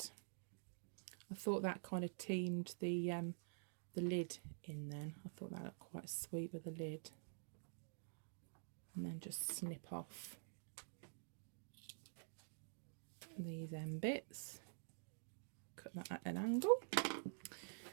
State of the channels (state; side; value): silent; left; digital silence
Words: I thought that kind of teamed the lid in then. I thought that looked quite sweet with the lid. And then just snip off these end bits. Cut that at an angle.